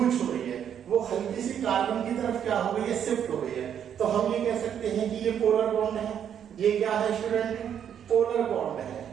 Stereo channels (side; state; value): left; quieter; 8.9 dB